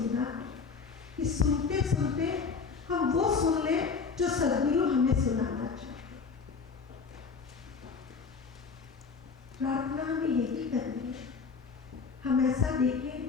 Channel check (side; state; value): right; quieter; 5.1 dB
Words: है कि सुनते सुनते हम वो सुन ले जो सद्गुरु हमें सुनाना चाहते। प्रार्थना हमें यही करनी है, हम ऐसा देखें